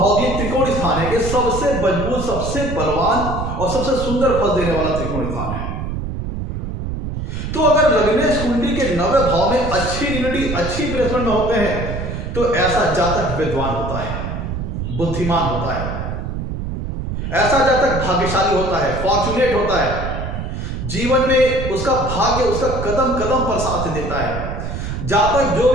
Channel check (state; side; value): noise; right; rumble, 5 dB below the sound